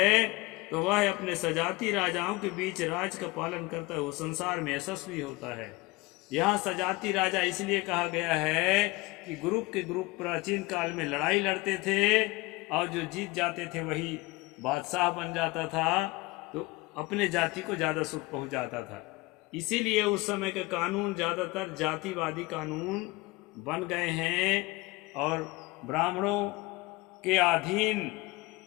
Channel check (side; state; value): right; quieter; 22.4 dB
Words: तो वह अपने सजाती राजाओं के बीच राज का पालन करता है, वो संसार में यशस्वी होता है। यहाँ सजाती राजा इसलिए कहा गया है कि ग्रुप के ग्रुप प्राचीन काल में लड़ाई लड़ते थे और जो जीत जाते थे वही बादशाह बन जाता था, तो अपने जाति को ज़्यादा सुख पहुँचाता था। इसीलिए उस समय के कानून ज़्यादातर जातिवादी कानून बन गए हैं और ब्राह्मणों के अधीन